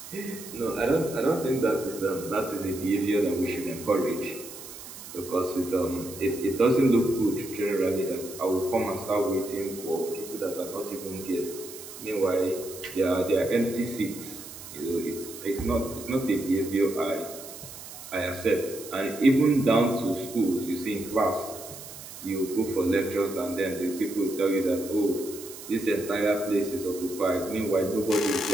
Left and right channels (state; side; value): noise; right; hiss, 13 dB below the sound